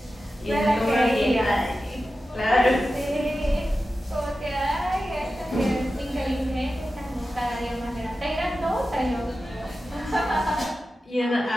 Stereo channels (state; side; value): normal; both; correlation 0.93